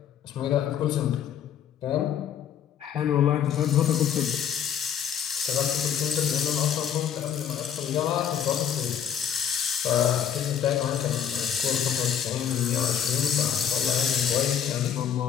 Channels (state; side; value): quieter; right; 8.8 dB